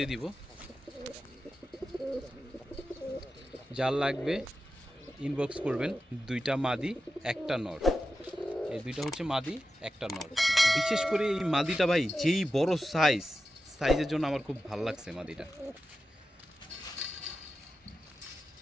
দিব। যার লাগবে ইনবক্স করবেন। দুইটা মাদি একটা নর, এই দুইটা হচ্ছে মাদি একটা নর। বিশেষ করে এই মাদিটা ভাই যেই বড় সাইজের জন্য আমার খুব ভালো লাগছে মাদিটা।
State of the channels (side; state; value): both; normal; correlation 0.92